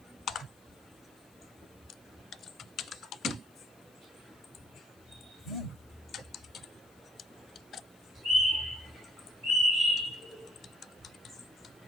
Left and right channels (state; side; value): noise; left; hiss, 29 dB below the sound